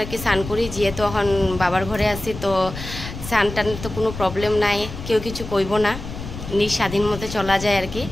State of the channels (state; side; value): noise; left; rumble, 10 dB below the sound